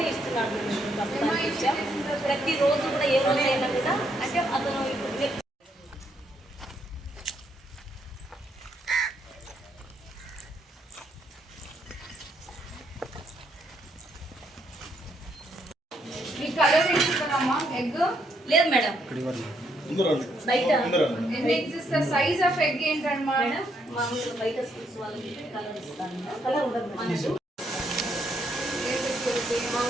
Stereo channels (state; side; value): normal; both; correlation 0.74